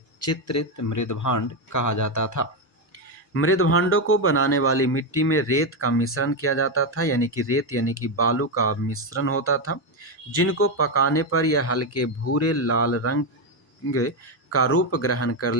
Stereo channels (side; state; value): both; normal; correlation 0.07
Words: चित्रित मृदभांड कहा जाता था। मृदभांडों को बनाने वाली मिट्टी में रेत का मिश्रण किया जाता था, यानी कि रेत यानी कि बालू का मिश्रण होता था, जिनको पकाने पर यह हल्के भूरे लाल रंग का रूप ग्रहण कर